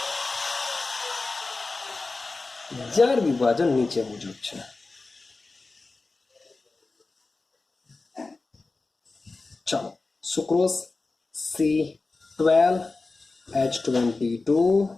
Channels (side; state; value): right; quieter; 3.6 dB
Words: જાર વિભાજન નીચે મુજબ છે. ચાલો, sucrose